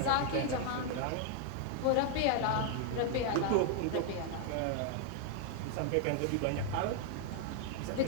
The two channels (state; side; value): different; both; correlation 0.00